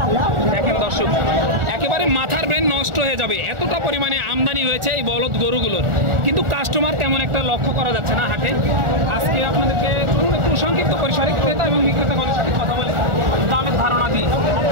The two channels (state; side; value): late; left; 1.4 ms